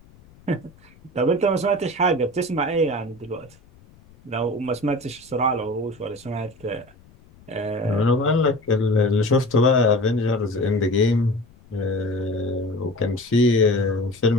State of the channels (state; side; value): noise; left; rumble, 27 dB below the sound